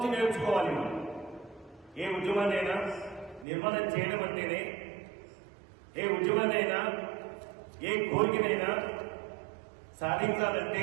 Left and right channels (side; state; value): left; drops out; at 3.5 s